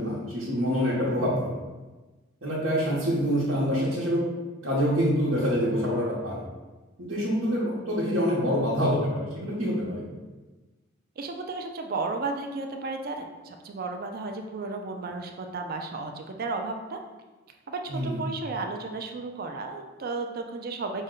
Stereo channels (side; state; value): both; normal; correlation 0.39